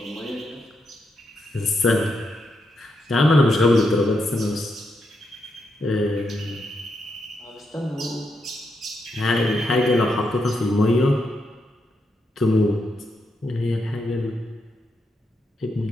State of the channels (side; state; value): both; normal; correlation 0.82